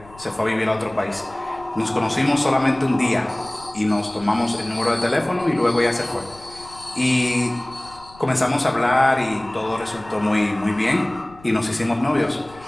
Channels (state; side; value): noise; left; rumble, 23 dB below the sound